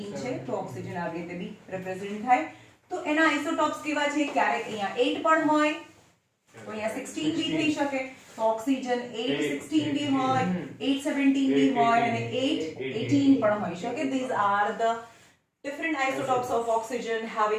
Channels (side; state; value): both; identical; correlation 1.00